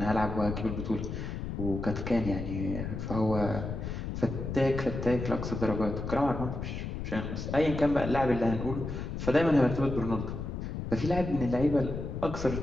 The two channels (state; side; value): noise; left; rumble, 5 dB below the sound